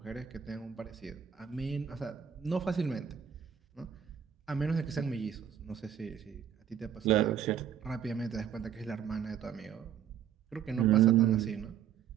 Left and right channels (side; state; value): left; quieter; 8.8 dB